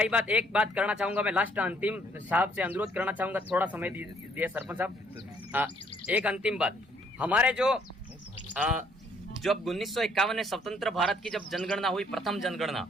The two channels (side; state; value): both; normal; correlation 0.65